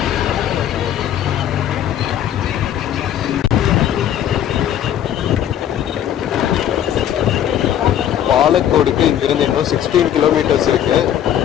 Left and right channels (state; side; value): quieter; right; 10.6 dB